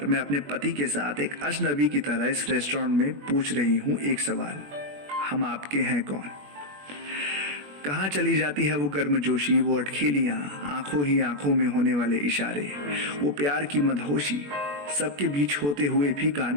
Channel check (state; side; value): late; left; 21 ms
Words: मैं अपने पति के साथ एक अजनबी की तरह इस रेस्टोरेंट में पूछ रही हूँ एक सवाल, हम आपके हैं कौन। कहाँ चली जाती है वो गर्मजोशी, वो अटखेलियां, आंखों ही आंखों में होने वाले इशारे, वो प्यार की मदहोशी, सबके बीच होते हुए भी